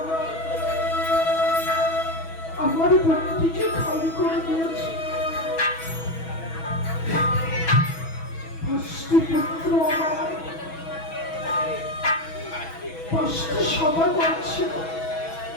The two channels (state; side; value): late; right; 6.1 ms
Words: আমার ভক্তিকে খালি করে দিয়েছে। পুত্র আমার 5টি সভা করছিল,